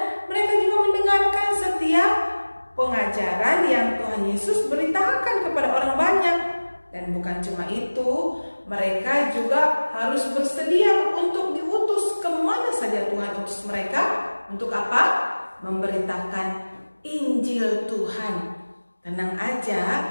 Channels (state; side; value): inverted; both; correlation -1.00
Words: mereka juga mendengarkan setiap pengajaran yang Tuhan Yesus beritakan kepada orang banyak. Dan bukan cuma itu, mereka juga harus bersedia untuk diutus kemana saja Tuhan utus mereka. Untuk apa? Memberitakan Injil Tuhan. Tenang aja,